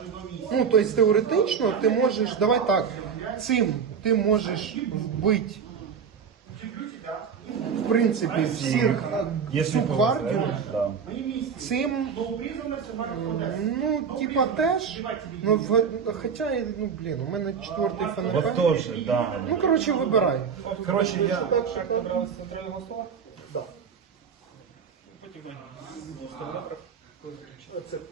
Ну, тобто теоретично ти можеш, давай так, цим ти можеш вбити, в принципі, всіх всю гвардію. Да. Цим, ну, типа теж, ну, хоча, ну, блін, у мене 4-й ФНП. Вот тоже, да. Ну, коротше, вибирай. Короче, я... Да.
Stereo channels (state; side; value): quieter; left; 6.7 dB